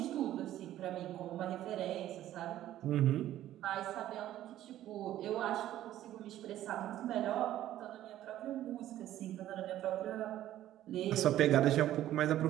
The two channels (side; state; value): left; quieter; 13.1 dB